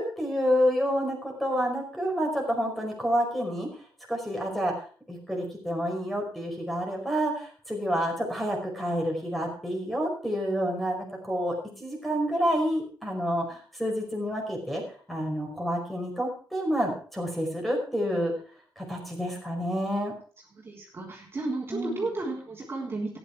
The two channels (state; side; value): normal; both; correlation 0.83